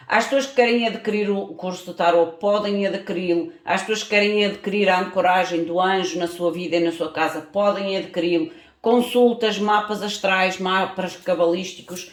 Às pessoas que querem adquirir o curso de Tarot, podem adquiri-lo. Às pessoas que querem adquirir a ancoragem do anjo na sua vida e na sua casa, podem adquiri-lo. Consultas, mapas astrais, mapas cabalísticos,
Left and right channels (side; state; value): both; identical; correlation 1.00